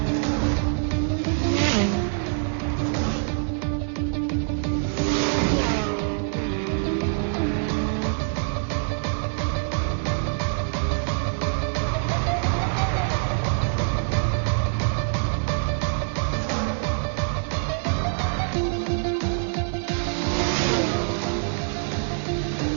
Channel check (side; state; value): left; silent; digital silence